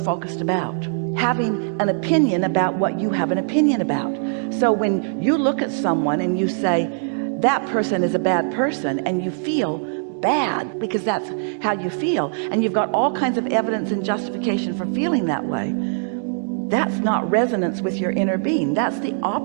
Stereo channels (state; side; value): silent; left; digital silence